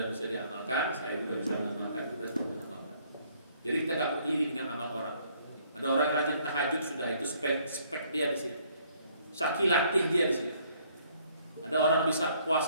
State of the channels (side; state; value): both; inverted; correlation -0.64